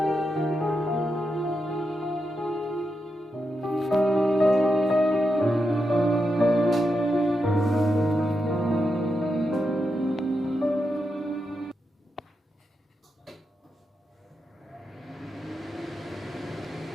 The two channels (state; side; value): normal; both; correlation 0.86